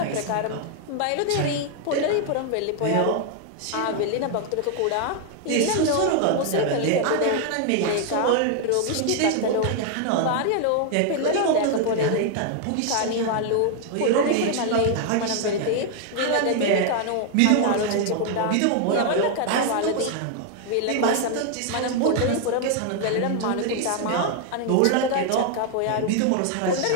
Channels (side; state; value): both; different; correlation 0.00